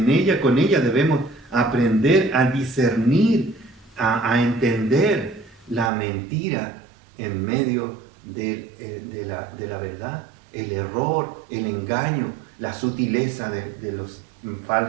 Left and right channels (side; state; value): left; drops out; at 5.9 s